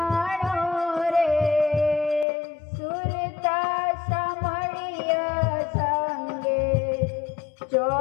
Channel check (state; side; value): drops out; right; at 2.2 s